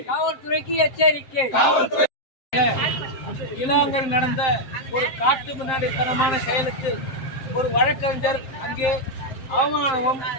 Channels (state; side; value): late; right; 7.6 ms